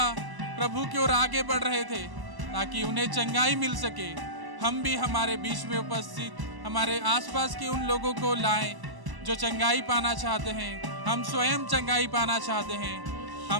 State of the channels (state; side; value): late; left; 1.0 ms